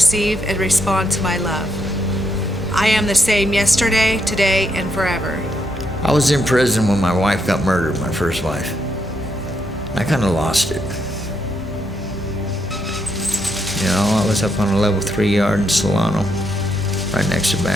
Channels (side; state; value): both; normal; correlation 0.78